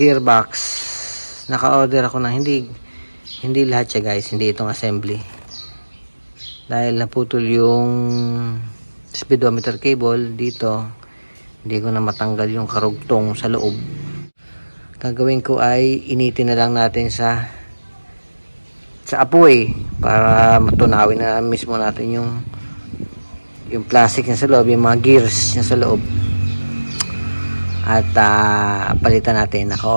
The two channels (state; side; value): inverted; both; correlation -1.00